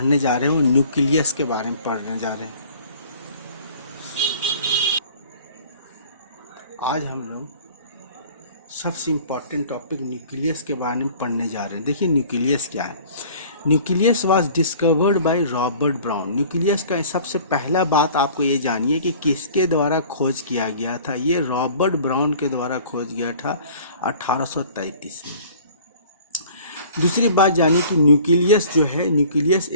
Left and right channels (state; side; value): inverted; both; correlation -0.49